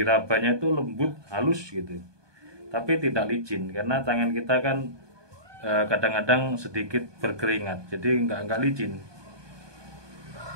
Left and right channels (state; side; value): late; left; 1.2 ms